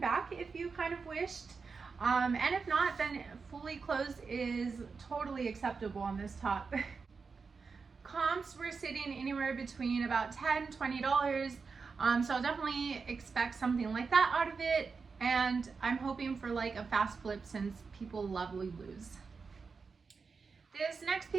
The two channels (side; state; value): left; quieter; 5.0 dB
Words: if you kind of wished, and if not, then fully closed is totally acceptable on this top. Comps were sitting anywhere between about $10 $20, so I'll definitely expect something like that out of it, and I'm hoping for like a fast flip since people love Lulu's. This next